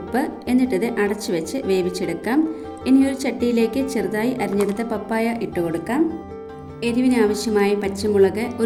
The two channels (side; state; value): both; identical; correlation 1.00